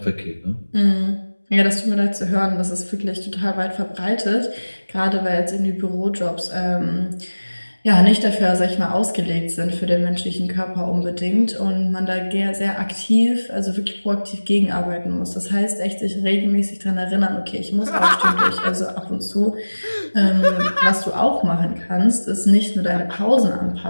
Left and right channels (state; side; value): inverted; both; correlation -1.00